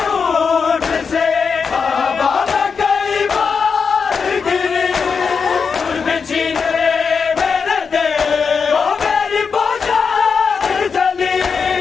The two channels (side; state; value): right; quieter; 5.7 dB